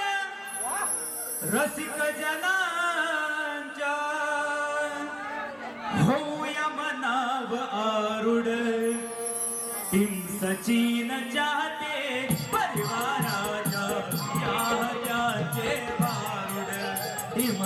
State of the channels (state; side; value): identical; both; correlation 1.00